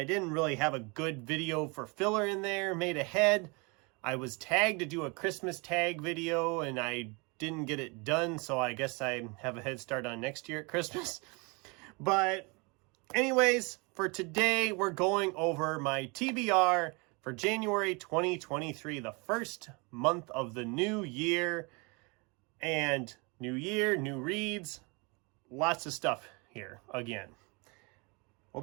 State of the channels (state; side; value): quieter; left; 29.6 dB